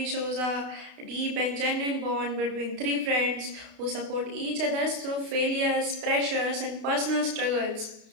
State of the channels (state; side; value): late; left; 32 ms